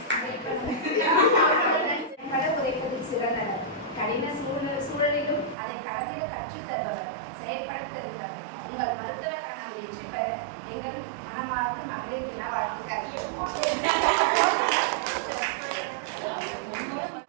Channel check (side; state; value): left; drops out; at 5.6 s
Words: உரைப்பதில் சிறந்தவர், கடின சூழலிலும் அதை கடந்திட கற்றுத் தருபவர், செயற்படுத்திருப்பவர். உங்கள் மருத்துவ கனவு வெற்றி பெற எங்கள் மனமார்ந்த மகளிர் தின வாழ்த்துக்கள்.